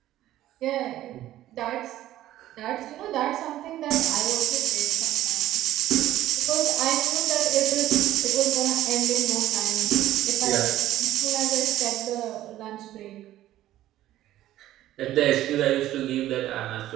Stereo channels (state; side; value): quieter; left; 13.9 dB